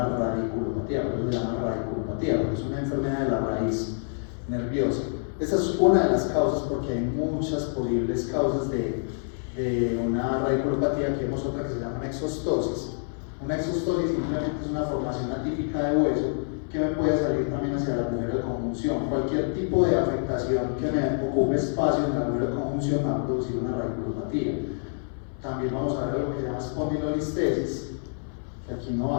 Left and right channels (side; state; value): right; silent; 60 dB below the other